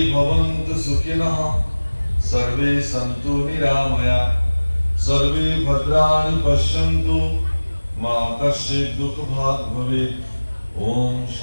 ভৱন্তু সুখিনঃ সৰ্বে সন্তু নিৰাময়া সৰ্বে ভদ্ৰাণি পশ্যন্তু মা কশ্চিৎ দুঃখভাগ ভৱেৎ। ওম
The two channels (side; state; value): both; inverted; correlation -1.00